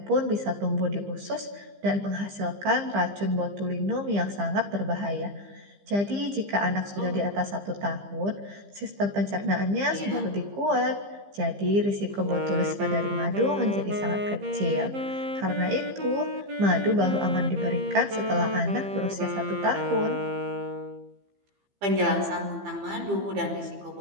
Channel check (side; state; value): left; late; 15 ms